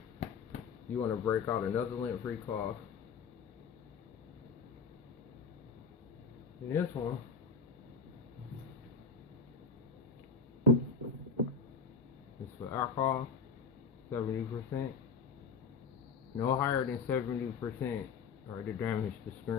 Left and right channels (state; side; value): quieter; right; 5.2 dB